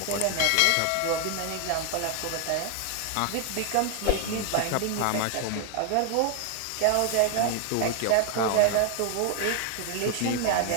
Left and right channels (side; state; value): both; different; correlation 0.00